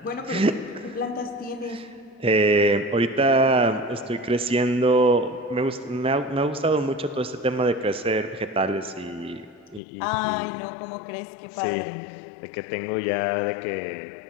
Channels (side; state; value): right; drops out; at 9.8 s